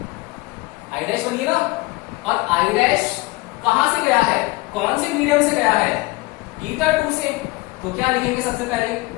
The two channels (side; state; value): right; quieter; 21.8 dB